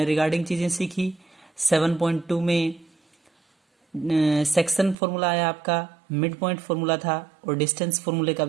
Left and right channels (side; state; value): left; drops out; at 5.0 s